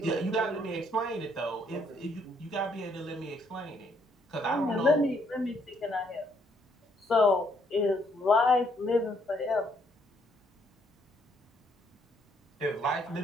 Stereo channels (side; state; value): both; normal; correlation 0.69